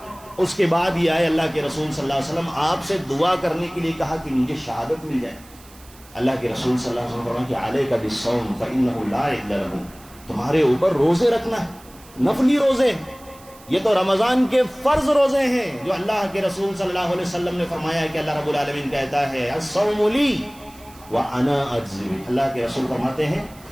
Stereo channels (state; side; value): noise; right; hiss, 23 dB below the sound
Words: اس کے بعد یہ آئے اللہ کے رسول صلی اللہ علیہ وسلم آپ سے دعا کرنے کے لیے کہا کہ مجھے شہادت مل جائے۔ اللہ کے رسول صلی اللہ علیہ وسلم فرمایا کہ علیک بالصوم فإنہ لا عدل لہ، تمہارے اوپر روزے رکھنا ہے، نفلی روزے، یہ تو رمضان کے فرض روزے ہیں جو اللہ کے رسول صلی اللہ علیہ وسلم نے فرمایا کہ اللہ رب العالمین کہتا ہے الصوم لی وانا اجزی بہ۔ اللہ کے رسول فرماتے ہیں